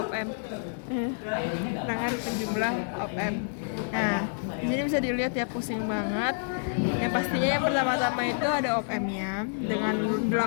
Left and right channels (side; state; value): right; silent; digital silence